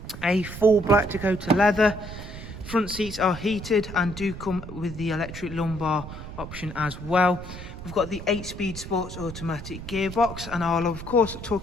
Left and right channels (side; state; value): right; noise; rumble, 11 dB below the sound